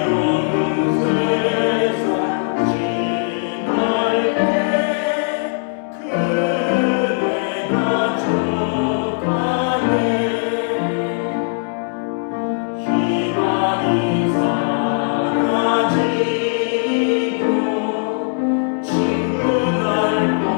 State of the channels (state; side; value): silent; right; digital silence